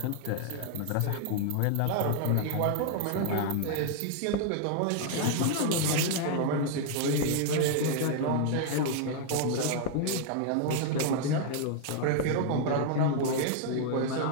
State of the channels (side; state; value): both; different; correlation 0.00